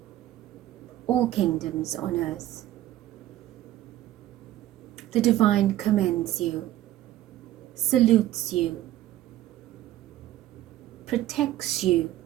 all kingdoms on earth. The divine commends you, salutes you, protects you,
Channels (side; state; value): left; quieter; 13.9 dB